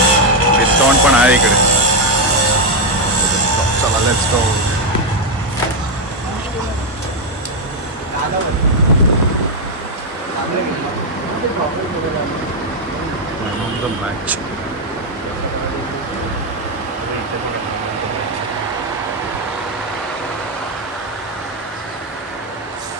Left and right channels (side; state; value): both; normal; correlation 0.04